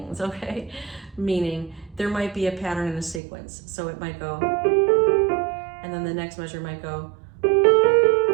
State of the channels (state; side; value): drops out; left; at 3.2 s